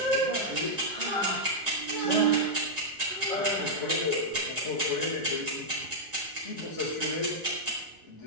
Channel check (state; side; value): normal; both; correlation -0.06